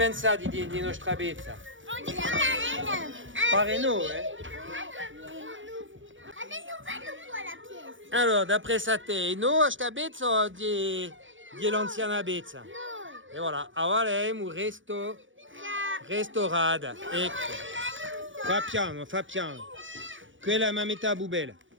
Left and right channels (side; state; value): left; late; 0.56 ms